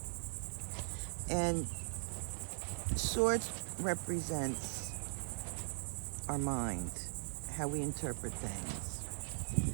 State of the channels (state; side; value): silent; left; 51 dB below the other